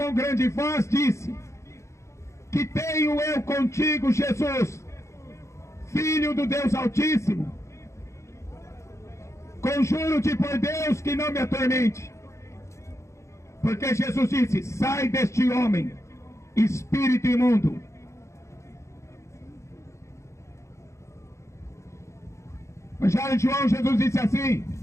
grande voz, disse: que tenho eu contigo, Jesus, Filho do Deus Altíssimo? Conjuro-te por Deus que não me atormente. Porque Jesus disse: sai deste homem, espírito imundo. Evangelho de João, Jesus disse assim,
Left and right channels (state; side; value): late; right; 0.14 ms